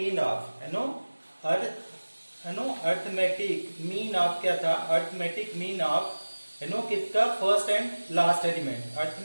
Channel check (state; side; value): inverted; both; correlation -1.00